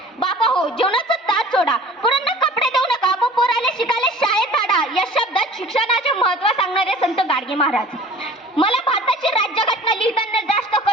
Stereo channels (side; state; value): both; normal; correlation 0.46